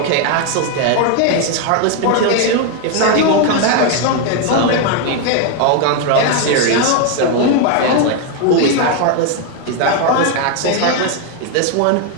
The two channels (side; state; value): both; different; correlation 0.01